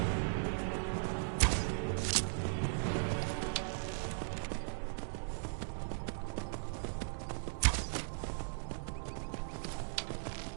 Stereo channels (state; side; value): silent; left; digital silence